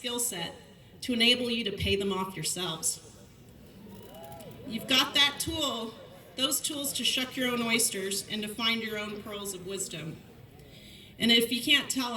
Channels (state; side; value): identical; both; correlation 1.00